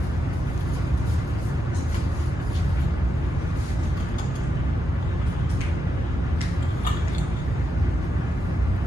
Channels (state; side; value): normal; both; correlation 0.84